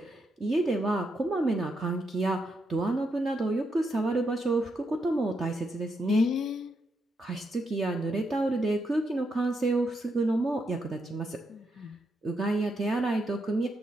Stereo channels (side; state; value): both; normal; correlation 0.81